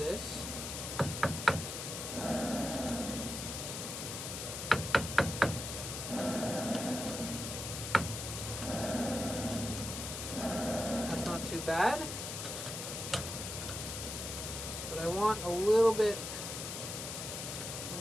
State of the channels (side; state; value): left; noise; hiss, 5 dB below the sound